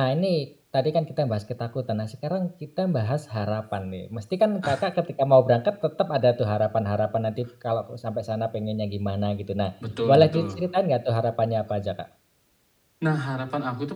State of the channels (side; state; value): both; identical; correlation 1.00